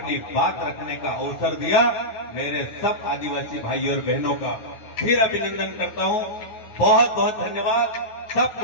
बात रखने का अवसर दिया। मेरे सब आदिवासी भाई और बहनों का फिर अभिनंदन करता हूँ। बहुत बहुत धन्यवाद।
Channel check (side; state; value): right; late; 9.4 ms